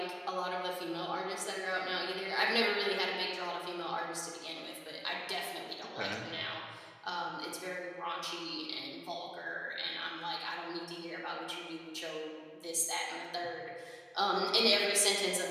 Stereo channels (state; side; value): identical; both; correlation 1.00